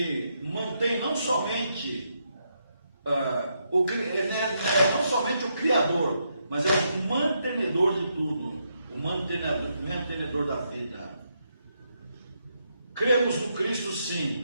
mantém não somente não somente o Criador, mas é o mantenedor de tudo. o mantenedor da vida. Cremos no Cristo,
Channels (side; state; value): both; inverted; correlation -0.80